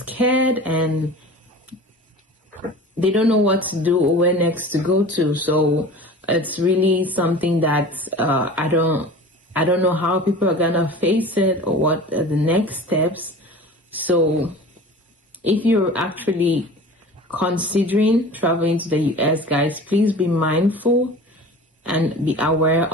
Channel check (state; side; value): normal; both; correlation 0.38